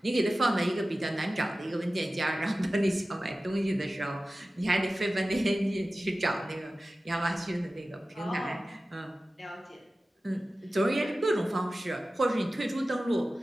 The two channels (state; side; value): normal; both; correlation 0.95